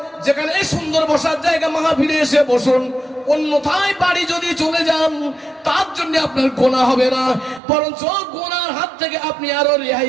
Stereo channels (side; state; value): left; drops out; at 7.6 s